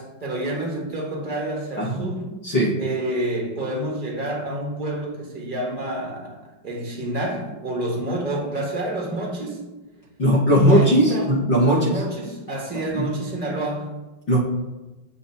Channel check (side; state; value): right; late; 5.6 ms